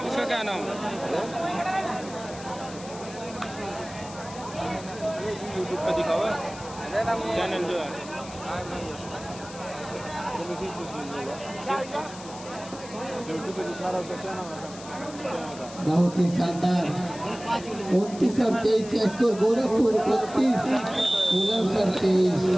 इसका क्या नाम यूट्यूब पे दिखा हुआ चैनल जो है यूट्यूब पे दिखा रहा है क्या नाम है बहुत ही शानदार 29 और 23 स्कोर। गोरखपुर 29 बुलंदशहर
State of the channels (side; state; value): left; noise; hiss, 16 dB below the sound